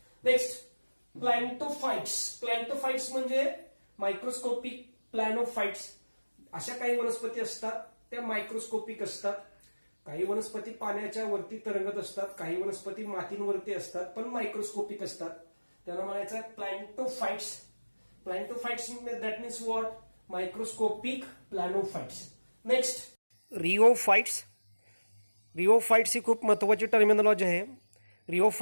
Next planktophytes. Planktophytes म्हणजे मायक्रोस्कोपिक प्लॅनोफाइट्स. अशा काही वनस्पती असतात त्या मायक्रोस्कोपिक असतात. काही वनस्पती पाण्याच्या वरती तरंगत असतात, काही वनस्पती मातींवरती असतात पण मायक्रोस्कोपिक असतात. त्यांना म्हणायचं आहे planktophytes. Planktophytes that means what? Microscopic planophytes. Next rheophytes. Rheophytes ही खूप महत्वाची टर्मिनॉलॉजी आहे.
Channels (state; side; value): inverted; both; correlation -1.00